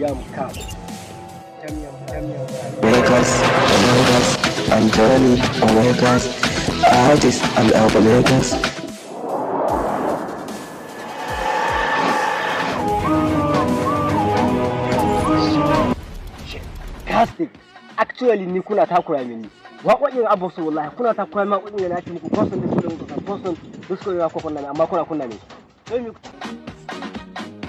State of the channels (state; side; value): identical; both; correlation 1.00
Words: ka Vegas, Anthony, Vegas, artists and Vegas. Fantastic. Actually ni kuna takura mini. Waƙoƙin Abu su wallahi kuna takura ma waƙoƙin na ci muku person da su da muku person da su ya ko kunna amma kuna kunna ne. Sai mi